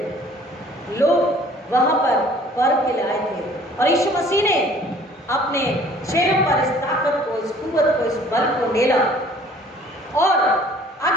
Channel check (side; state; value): both; normal; correlation 0.53